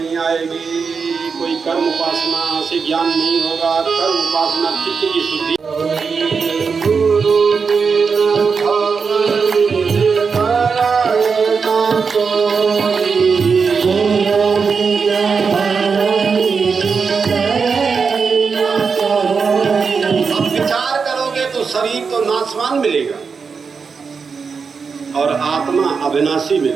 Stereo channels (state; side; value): quieter; left; 5.4 dB